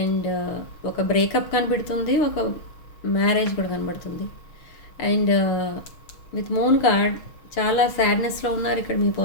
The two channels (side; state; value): right; late; 6.3 ms